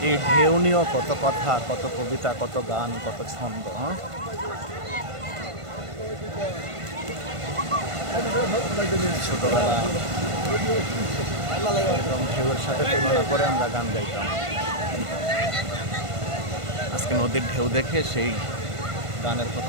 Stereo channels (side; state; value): left; late; 1.5 ms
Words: এই ঢেউ নিয়েও কত কথা, কত কবিতা, কত গান, কত ছন্দ। ছোটবেলা একদম ঢেউয়ের সাথে তুলনা করে আমরা গান গাইতাম। আজকে নদীর ঢেউ দেখে সেই গানের